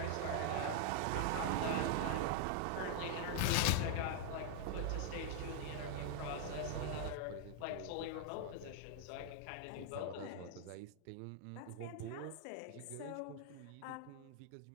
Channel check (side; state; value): both; different; correlation 0.00